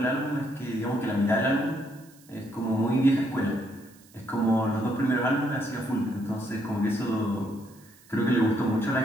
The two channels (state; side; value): noise; right; hiss, 26 dB below the sound